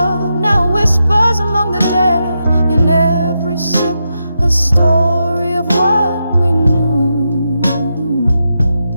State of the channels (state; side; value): inverted; both; correlation -0.86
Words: now whispers among the dead. In every sip a story of what we knew.